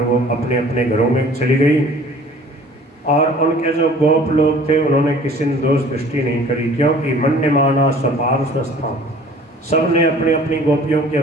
वो अपने अपने घरों में चली गई। और उनके जो गोप लोग थे उन्होंने किसी ने दोष दृष्टि नहीं करी, क्योंकि मन्यमाना स्वपार्श्वस्थान, सब ने अपनी अपनी गोपियों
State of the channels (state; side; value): normal; both; correlation 0.49